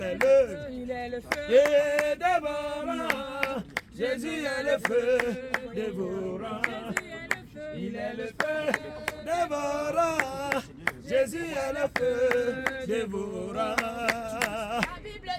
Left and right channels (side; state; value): both; identical; correlation 1.00